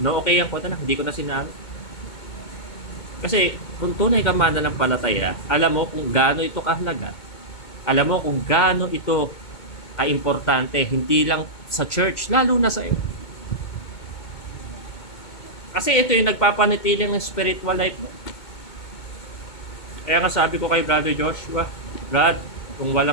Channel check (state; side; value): late; right; 2.2 ms